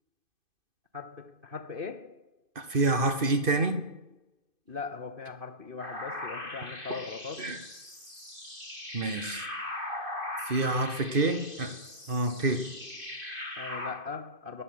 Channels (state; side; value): late; left; 2.5 ms